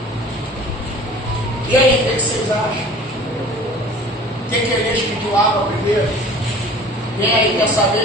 E aí, o que vocês acham? Por que Elias pediu água primeiro? Quem aí quer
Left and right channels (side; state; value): both; normal; correlation 0.43